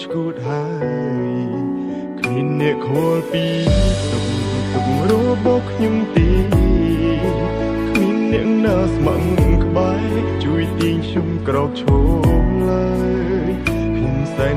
ឈួតហើយគ្មានអ្នកខលពីទុករបស់ខ្ញុំទេគ្មានអ្នកណាស្មឹងក្បែរជួយទាញខ្ញុំក្រោកឈរឡើយខ្ញុំសែន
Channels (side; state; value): both; identical; correlation 1.00